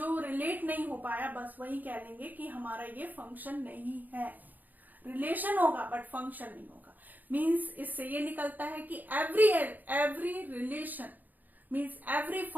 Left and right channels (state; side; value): late; left; 0.084 ms